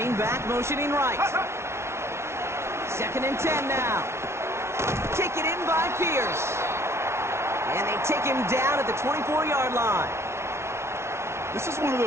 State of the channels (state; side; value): late; left; 0.13 ms